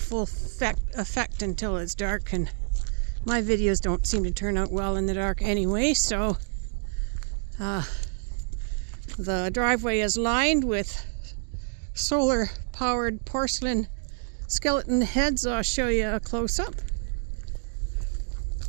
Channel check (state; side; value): silent; left; digital silence